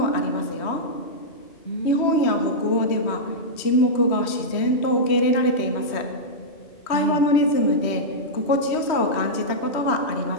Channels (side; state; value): right; late; 3.1 ms